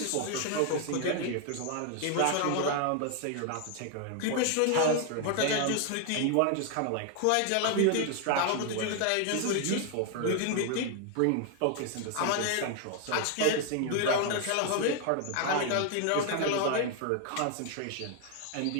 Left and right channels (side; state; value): both; different; correlation 0.00